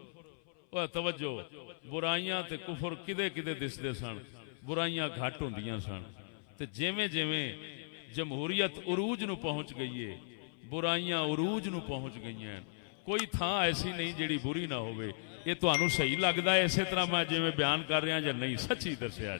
توجہ، برائیاں تے کفر کدے کدے دسدے سن، برائیاں گھٹ ہوندیاں سن، تے جیویں جیویں جمہوریت عروج نو پہنچ گئی ہے، برائیاں عروج نو پہنچ گئی ہیں، کوئی تھان ایسی نہیں جیڑی بری نہ ہوئے۔ یہ تانوں صحیح لگدا ہے اسی طرح میں جویں بیان کر رہا یا نہیں؟ سچی دسیا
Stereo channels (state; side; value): silent; right; 54 dB below the other